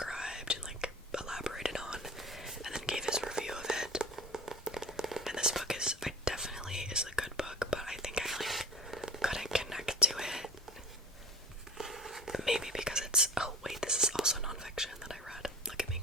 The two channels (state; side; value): normal; both; correlation 0.37